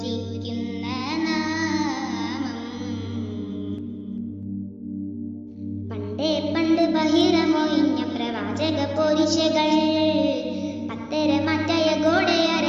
നാമം പണ്ട് ബഹിരമൊഴിഞ്ഞ പ്രവാചക പോരിശകൾ പത്തരമാറ്റായ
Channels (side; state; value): both; identical; correlation 1.00